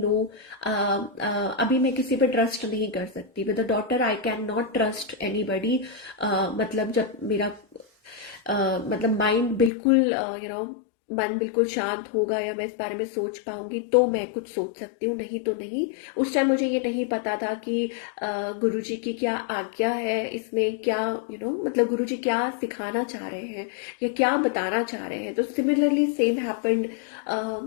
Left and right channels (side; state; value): right; drops out; at 9.7 s